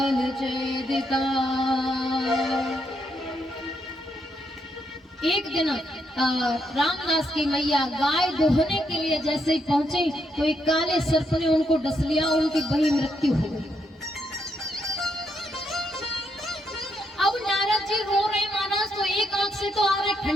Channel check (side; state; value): both; normal; correlation 0.78